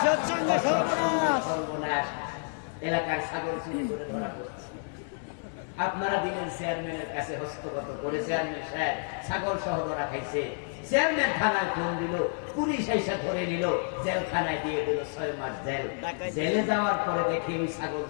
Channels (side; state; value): right; silent; 58 dB below the other